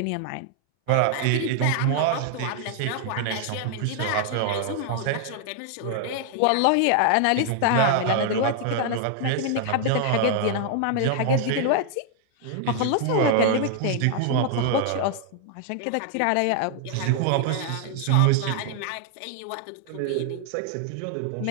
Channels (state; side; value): different; both; correlation 0.00